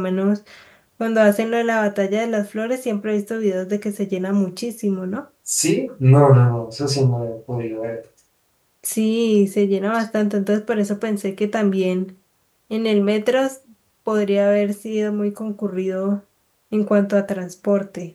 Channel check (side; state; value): both; identical; correlation 1.00